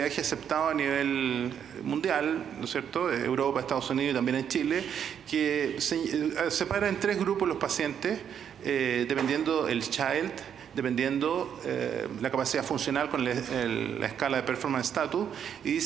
aceptado a nivel mundial, ¿no es cierto? Europa, Estados Unidos y también en Chile, que separa en 3 grupos los pacientes, dependiendo el child, dependiendo la capacidad funcional con la escala de performance status, y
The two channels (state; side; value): quieter; left; 8.5 dB